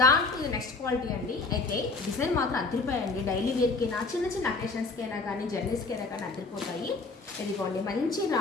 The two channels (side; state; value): right; quieter; 4.0 dB